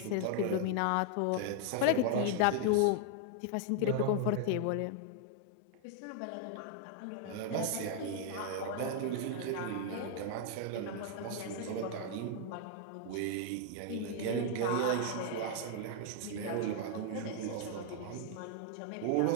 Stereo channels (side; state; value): both; different; correlation 0.00